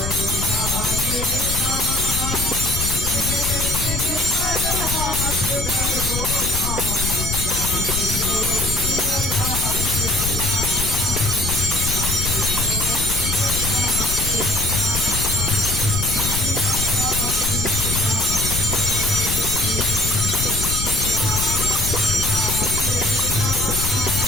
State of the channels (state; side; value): noise; left; rumble, 4 dB below the sound